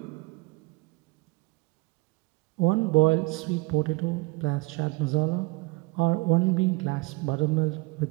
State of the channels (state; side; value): quieter; left; 24.9 dB